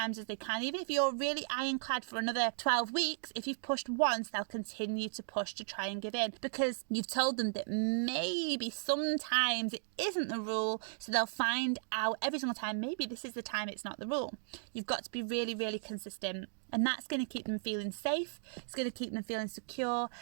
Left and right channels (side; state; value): left; silent; digital silence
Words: as they can. Even if you're really ironclad for another 12 weeks, if you've pushed once, they'll continue to push to try and give in, because you've told them that maybe sometimes it isn't the rule. So they'll find out every single time, maybe this is the time it's not the rule. You've got to be really, really consistent. And that's going to keep them feeling safe, it's going to keep them feeling secure,